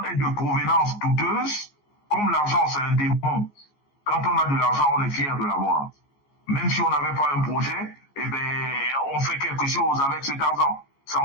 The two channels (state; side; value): late; right; 14 ms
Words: est de provenance douteuse, comme l'argent c'est un démon, quand on a de l'argent, on est fier de l'avoir. Même si on n'avait pas un projet, eh ben, on fait quelque chose avec cet argent. Ça,